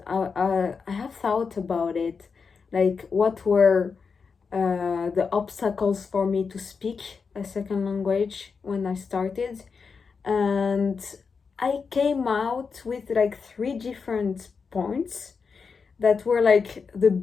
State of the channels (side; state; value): right; quieter; 5.4 dB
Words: I have thought about it, like what were the obstacles for me to speak a second language when I started. And I came out with like three different points that were like the